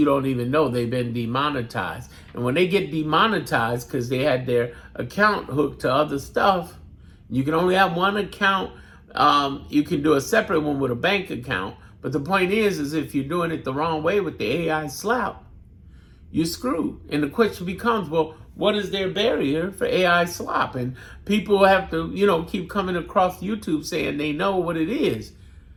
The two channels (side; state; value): both; identical; correlation 1.00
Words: don't even know they've been demonetized. And when they get demonetized because they had their account hooked to other stuff, you can only have one account. You can do a separate one with a bank account. But the point is if you're doing it the wrong way with the AI slap, you're screwed. And the question becomes, well, what is their barrier for AI slop? And people have to, keep coming across YouTube saying they know what it is.